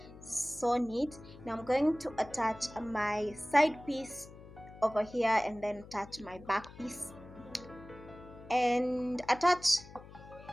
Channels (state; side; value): noise; left; hum, 18 dB below the sound